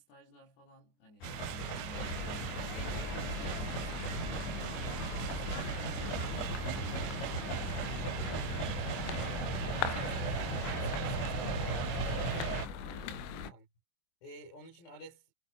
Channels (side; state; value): right; late; 24 ms